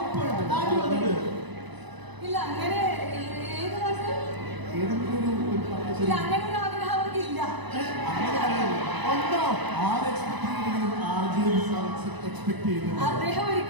ഇല്ല അങ്ങനെ അങ്ങനെ ഒരു ആഗ്രഹം അവർക്ക് ഇല്ല. അദ്ദേഹം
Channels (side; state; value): left; late; 1.0 ms